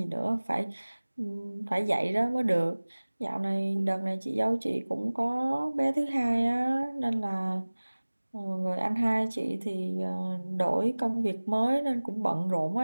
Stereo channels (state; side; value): inverted; both; correlation -1.00